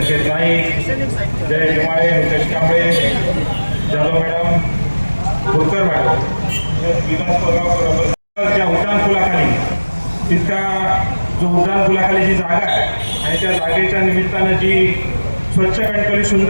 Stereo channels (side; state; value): both; inverted; correlation -1.00